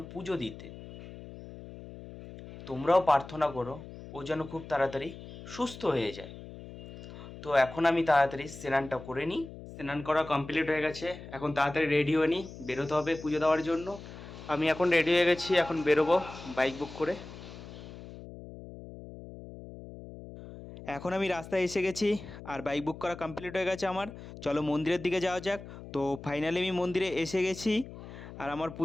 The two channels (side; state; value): left; noise; hum, 14 dB below the sound